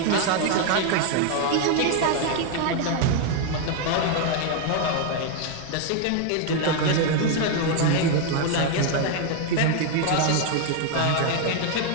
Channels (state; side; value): different; both; correlation 0.01